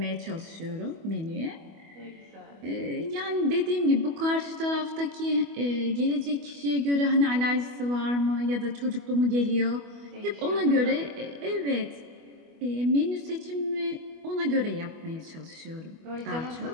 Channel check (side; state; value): left; late; 25 ms